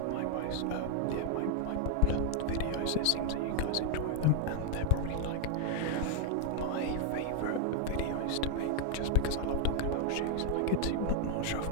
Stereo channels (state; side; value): different; both; correlation 0.00